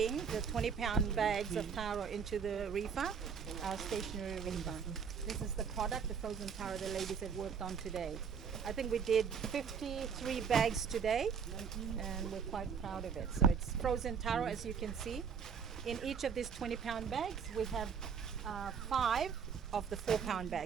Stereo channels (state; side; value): quieter; left; 6.6 dB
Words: the 20-pound bags of taro into the reefer, our stationary reefer. This is the product, the frozen taro the ladies have worked on today. I think we did 53 bags today, and we're quite proud of it. So it's frozen taro, as you can see. In each of these 20-pound bags, we have 5 of the 4-pound